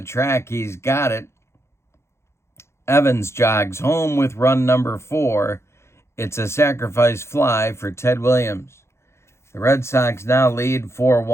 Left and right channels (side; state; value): right; late; 0.13 ms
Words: track. He's got it. Evans jogs home with run number 4. It's a sacrifice fly for Ted Williams. The Red Sox now lead